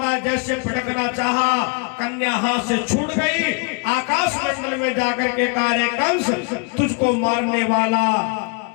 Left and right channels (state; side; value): quieter; right; 33.8 dB